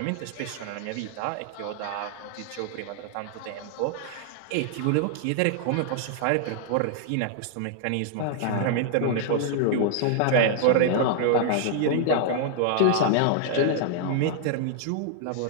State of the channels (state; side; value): different; both; correlation -0.01